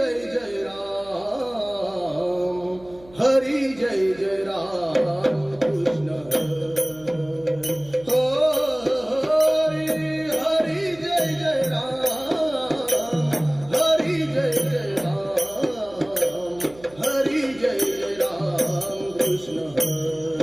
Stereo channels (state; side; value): noise; right; hum, 23 dB below the sound